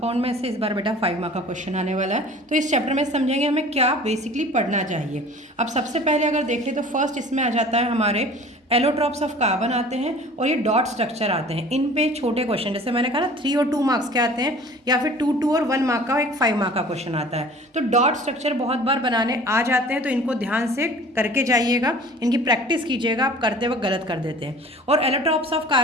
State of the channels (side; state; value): both; normal; correlation 0.46